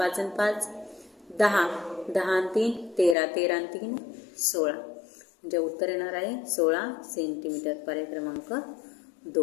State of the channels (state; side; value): drops out; right; at 3.2 s